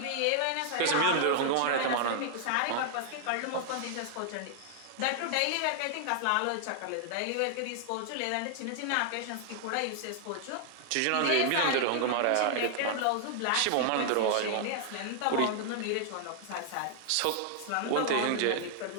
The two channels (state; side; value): different; both; correlation 0.00